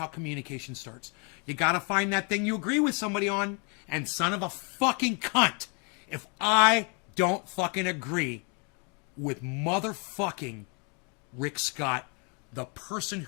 communication starts. You gotta find that thing you agree with somebody on. And son of a fucking cunt, if I don't fucking agree with motherfucking Rick Scott, the person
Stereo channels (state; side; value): quieter; right; 35.4 dB